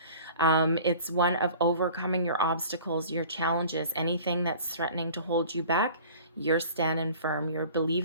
It's one of overcoming your obstacles, your challenges, anything that's threatening to hold you back. You're standing firm. You're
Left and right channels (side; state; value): both; inverted; correlation -0.45